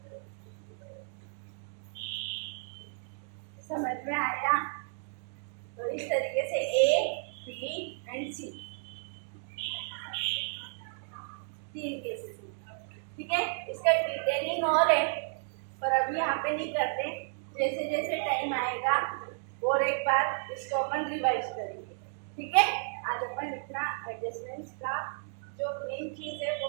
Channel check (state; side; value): silent; left; digital silence